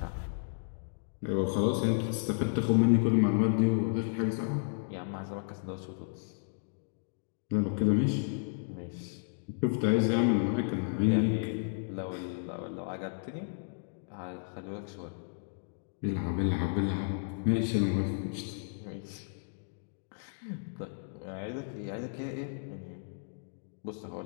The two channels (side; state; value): right; silent; digital silence